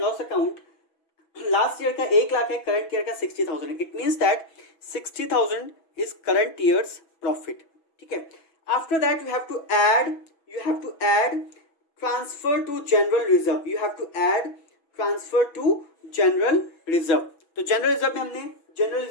loss account. Last year का 1 लाख है, करंट ईयर का 60,000 है. It means that 60,000 is current year's profit. ठीक है, after that you have to add transfer to general reserve. You have to add transfer to general reserve. तो general reserve में हमने general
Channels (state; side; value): late; right; 6.1 ms